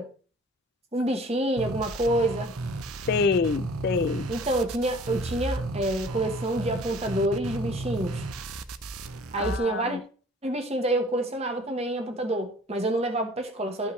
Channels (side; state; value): both; normal; correlation 0.49